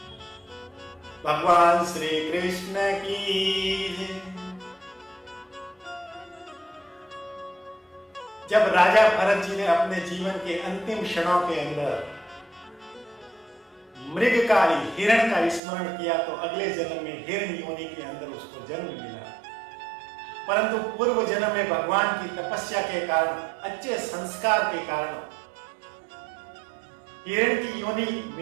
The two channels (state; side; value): drops out; left; at 15.6 s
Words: भगवान श्री कृष्ण की। जब राजा भरत जी ने अपने जीवन के अंतिम क्षणों के अंदर मृगकाली हिरण का स्मरण किया तो अगले जन्म में हिरण योनि के अंदर उसको जन्म मिला। परंतु पूर्व जन्म में भगवान की तपस्या के कारण, अच्छे संस्कार के कारण हिरण की योनि